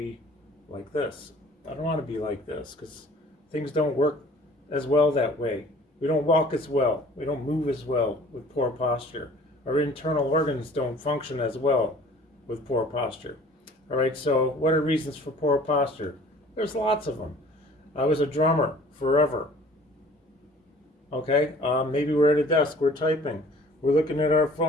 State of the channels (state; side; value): normal; both; correlation 0.51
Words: like this. I don't want to be like this because things don't work as well that way. We don't walk as well. We don't move as well with poor posture. Our internal organs don't function as well with poor posture. All right, so what are reasons for poor posture? There's lots of them. I was a drummer forever. Okay, maybe we're at a desk, we're typing, we're looking at our